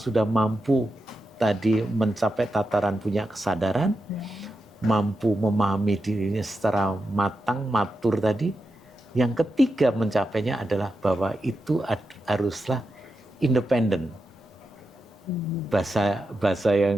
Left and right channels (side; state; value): both; normal; correlation 0.88